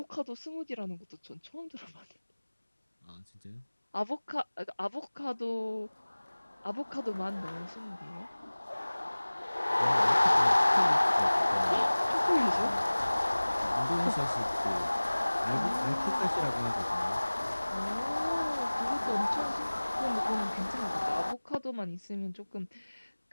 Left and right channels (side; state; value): both; inverted; correlation -1.00